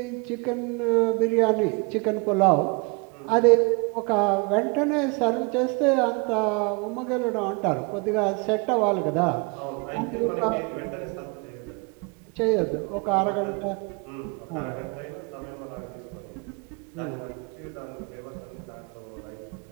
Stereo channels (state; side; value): quieter; left; 30.6 dB